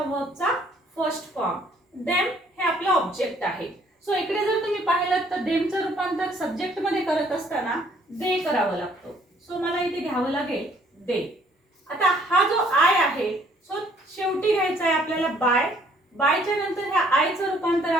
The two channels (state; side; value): normal; both; correlation 0.62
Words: वर्बचा 1st फॉर्म. देम हे आपलं ऑब्जेक्ट आहे. सो इकडे जर तुम्ही पाहिलं तर देमचं रूपांतर सब्जेक्ट मध्ये करत असताना दे करावं लागतं. सो मला इथे घ्यावं लागेल दे. आता हा जो आय आहे सो शेवटी घ्यायचा आहे आपल्याला बाय. बायच्या नंतर ह्या आयचं रूपांतर